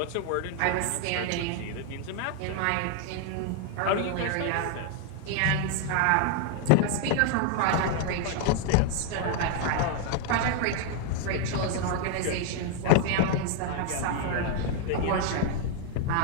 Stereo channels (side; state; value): both; different; correlation 0.00